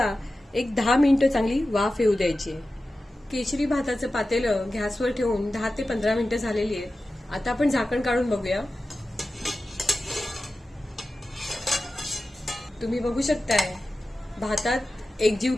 एक 10 मिनिटं चांगली वाफ येऊ द्यायची आहे. केशरी भाताचं पातेलं गॅसवर ठेवून 10 ते 15 मिनिटं झालेली आहेत. आता आपण झाकण काढून बघूया. तुम्ही बघू शकताय भातात एकजीव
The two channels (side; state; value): both; normal; correlation 0.94